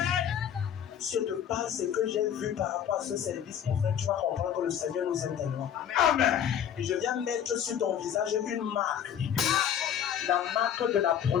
Si je te parle ce que j'ai vu par rapport à ce service, mon frère, tu vas comprendre que le Seigneur nous aime tellement. Amen. Et je viens mettre sur ton visage une marque. La marque de la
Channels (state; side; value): quieter; right; 9.2 dB